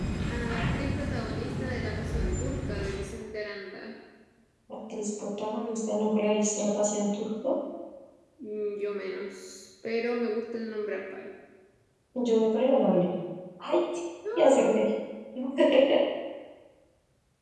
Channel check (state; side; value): identical; both; correlation 1.00